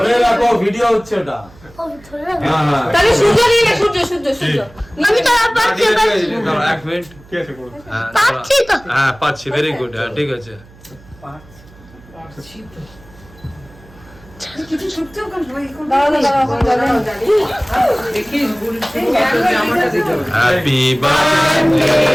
ভিডিও হচ্ছে ওটা। তাহলে সূর্য নিয়ে নে, সূর্য সূর্য সূর্য। আমি তো পাচ্ছি এক মিনিট, কি আছে করব? পাচ্ছি তো। হ্যাঁ পাচ্ছি, ভেরি গুড। হ্যাঁ ঠিক আছে। Happy birthday,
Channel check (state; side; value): noise; right; hum, 24 dB below the sound